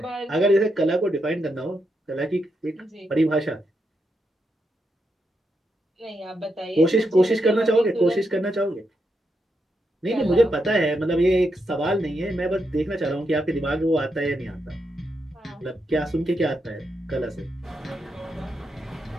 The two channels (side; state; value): both; normal; correlation 0.83